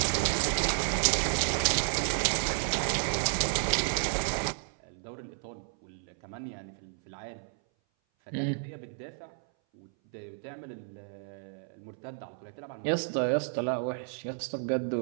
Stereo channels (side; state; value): left; silent; 56 dB below the other